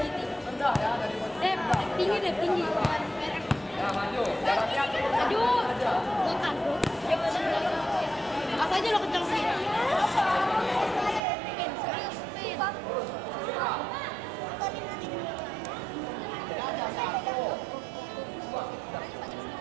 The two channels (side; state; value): left; drops out; at 11.2 s